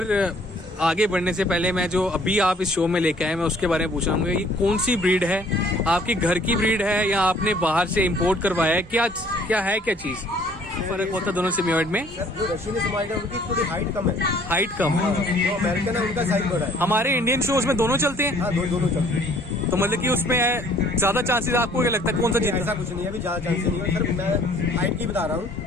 आगे बढ़ने से पहले मैं जो अभी आप इस शो में लेके आए मैं उसके बारे में पूछूंगा, ये कौन सी ब्रीड है? आपकी घर की ब्रीड है या आपने बाहर से इंपोर्ट करवाया है? क्या है क्या चीज फर्क होता है दोनों सिम्योइड में? जो रशियन सिम्योइड है उनकी थोड़ी हाइट कम है। हाइट कम? जो अमेरिकन है उनका साइज बड़ा है। हमारे इंडियन शोज में दोनों चलते हैं? हाँ, दोनों चलते हैं। तो मतलब कि उसमें ज्यादा चांसेस आपको क्या लगता है कौन सा जीत? ऐसा कुछ नहीं है, अभी ज्यादा चांसेस नहीं है सर, मैं हाइट की बता रहा हूँ।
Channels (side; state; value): both; normal; correlation 0.57